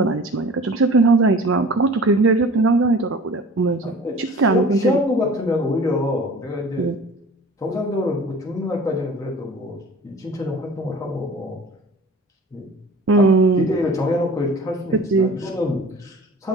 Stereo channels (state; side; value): normal; both; correlation 0.44